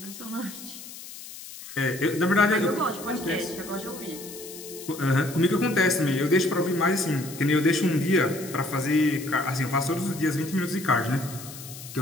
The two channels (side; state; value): left; noise; hiss, 14 dB below the sound